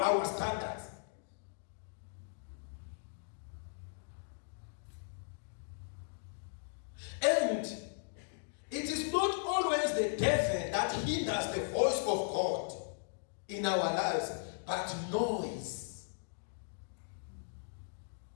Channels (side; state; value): right; silent; digital silence